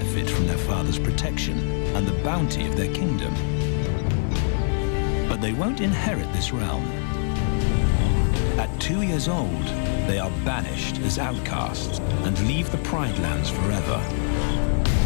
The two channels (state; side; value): silent; right; digital silence